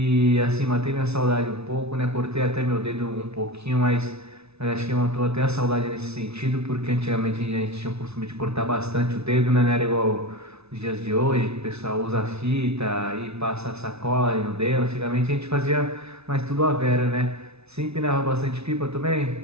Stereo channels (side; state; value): left; late; 0.80 ms